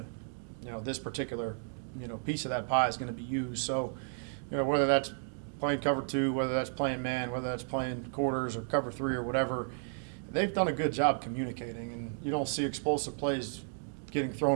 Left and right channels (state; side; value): silent; left; 56 dB below the other